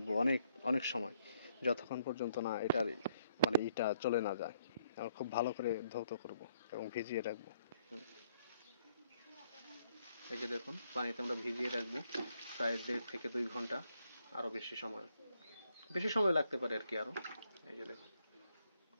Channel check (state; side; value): inverted; both; correlation -0.69